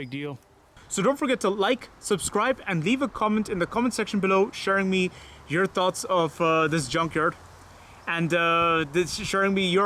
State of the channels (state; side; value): identical; both; correlation 1.00